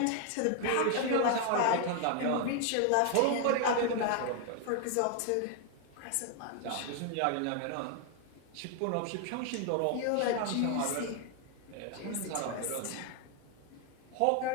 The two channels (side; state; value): both; different; correlation 0.00